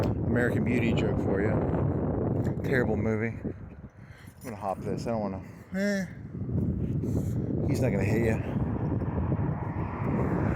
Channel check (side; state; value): both; identical; correlation 1.00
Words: American Beauty joke for you. Terrible movie. I'm gonna hop this. I don't want to. He's not gonna hit you.